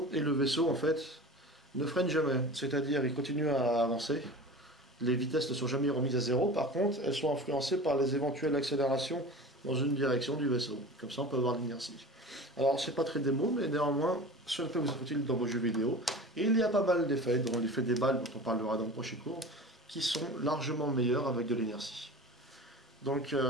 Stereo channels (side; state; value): both; normal; correlation 0.35